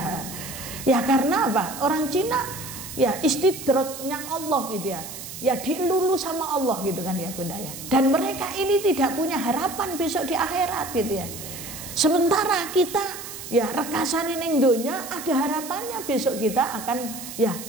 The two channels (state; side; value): noise; right; hiss, 11 dB below the sound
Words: Ya karena apa? Orang Cina ya istidraknya Allah gitu ya. Ya dilulu sama Allah gitu kan ya, Bunda ya. Dan mereka ini tidak punya harapan besok di akhirat gitu ya. Sementara kita ya rekasane ning donya ada harapannya besok kita akan ya